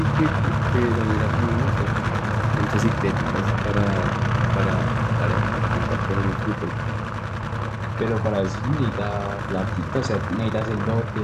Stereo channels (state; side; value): identical; both; correlation 1.00